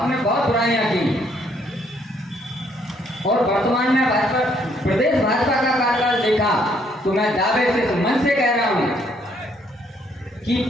बहुत बुराइयां की, और वर्तमान में प्रदेश भाजपा का कार्यकाल देखा तो मैं दावे से मन से कह रहा हूं कि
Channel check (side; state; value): both; normal; correlation 0.68